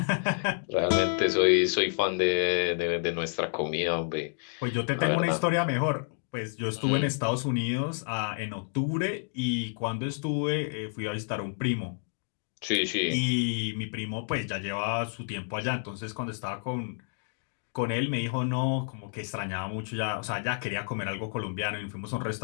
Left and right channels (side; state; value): right; silent; 58 dB below the other